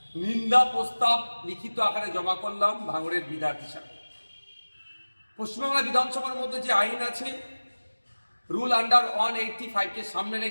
নিন্দা প্রস্তাব লিখিত আকারে জমা করলাম ভাঙড়ের বিধায়ক হিসাবে। পশ্চিমবাংলা বিধানসভার মধ্যে যে আইন আছে, রুল আন্ডার 185কে সামনে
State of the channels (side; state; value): both; inverted; correlation -1.00